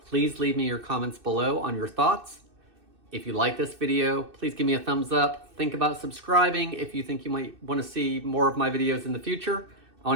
leave me your comments below on your thoughts. If you like this video, please give me a thumbs up. Think about subscribing if you think you might want to see more of my videos in the future. I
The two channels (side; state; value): left; late; 2.6 ms